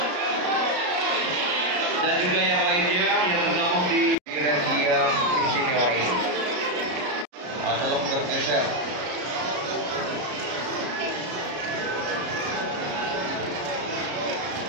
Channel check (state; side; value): late; left; 33 ms